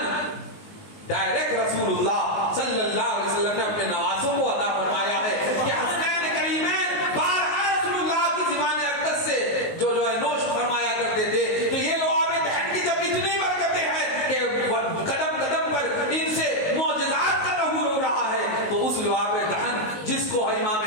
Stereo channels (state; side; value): late; right; 19 ms